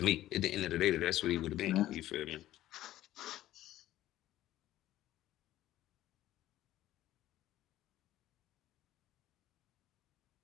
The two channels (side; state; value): right; quieter; 14.2 dB